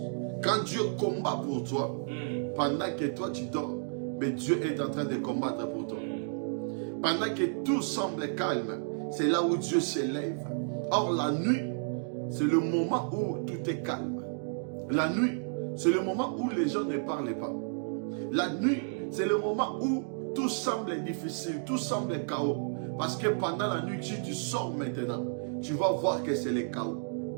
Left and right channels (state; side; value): silent; left; digital silence